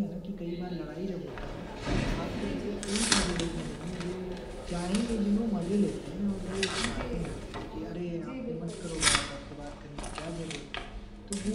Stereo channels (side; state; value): both; identical; correlation 1.00